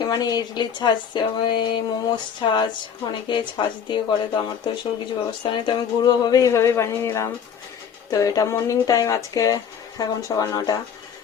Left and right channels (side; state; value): right; quieter; 7.6 dB